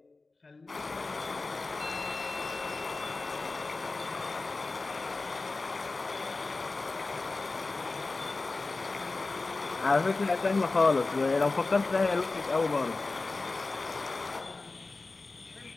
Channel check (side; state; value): right; quieter; 3.6 dB